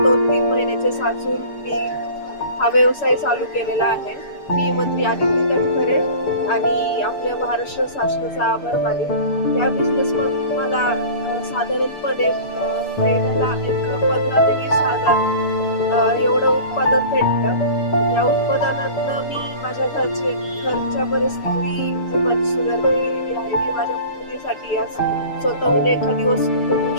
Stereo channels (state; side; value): late; right; 6.8 ms